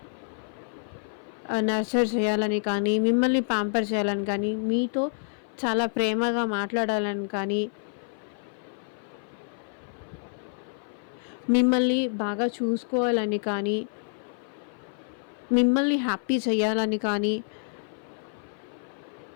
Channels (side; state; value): right; silent; 55 dB below the other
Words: చేయాలని కానీ, మిమ్మల్ని ప్యాంపర్ చేయాలని కానీ, మీతో చాలా ప్రేమగా మాట్లాడాలని కానీ, మిమ్మల్ని బాగా చూసుకోవాలని కానీ, మిమ్మల్ని హ్యాపీ చేయాలని కానీ,